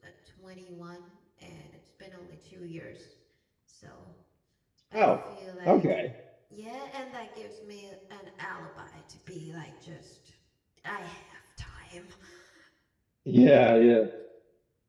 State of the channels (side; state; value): both; identical; correlation 1.00